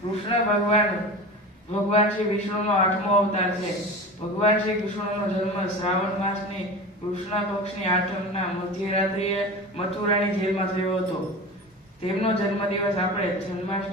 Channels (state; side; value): normal; both; correlation 0.31